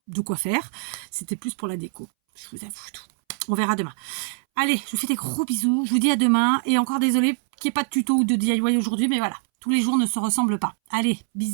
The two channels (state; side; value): silent; left; 63 dB below the other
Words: de quoi faire. C'était plus pour la déco. Je vous avoue tout. On verra demain. Allez, je vous fais des gros bisous. Je vous dis à demain. Et encore désolé qu'il n'y ait pas de tuto ou de DIY aujourd'hui, mais voilà. Tous les jours ne se ressemblent pas. Allez,